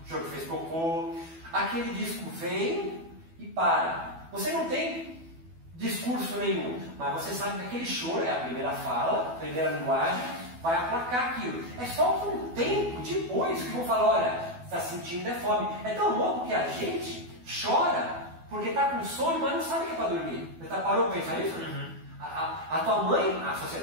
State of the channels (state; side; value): late; left; 12 ms